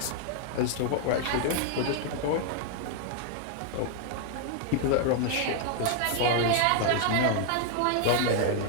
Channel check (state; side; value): different; both; correlation 0.00